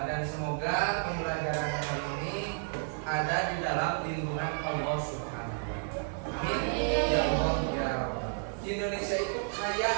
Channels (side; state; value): left; silent; 57 dB below the other